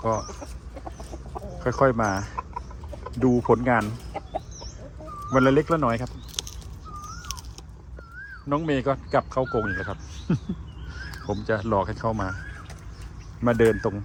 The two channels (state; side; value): identical; both; correlation 1.00